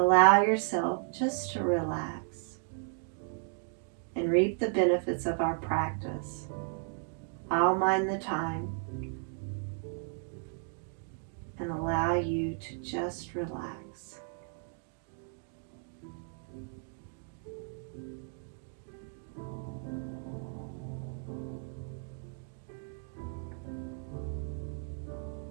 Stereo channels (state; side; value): silent; left; 55 dB below the other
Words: yourself just to relax and reap the benefits of our practice. I'll mind the time and allow you to just relax.